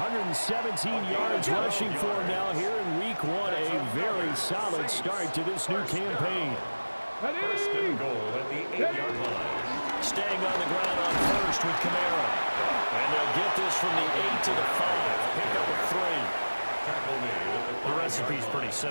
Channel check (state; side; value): inverted; both; correlation -1.00